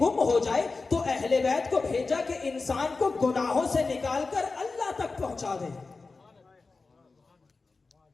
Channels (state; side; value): quieter; right; 4.0 dB